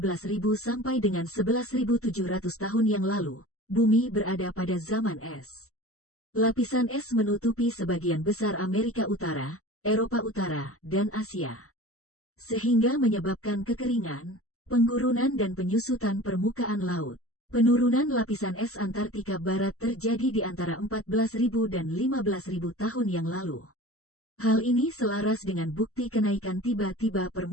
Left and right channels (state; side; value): late; right; 0.64 ms